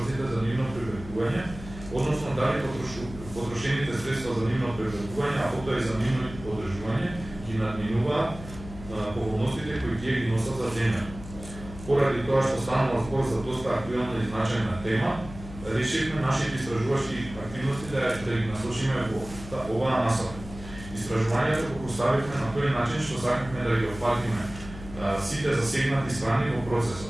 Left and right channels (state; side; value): noise; left; hum, 14 dB below the sound